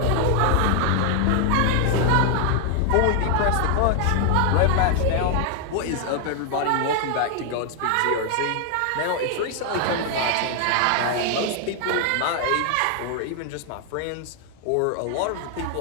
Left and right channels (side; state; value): both; different; correlation 0.00